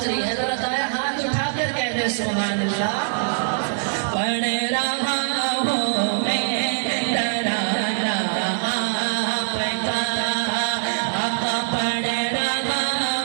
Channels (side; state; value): left; silent; digital silence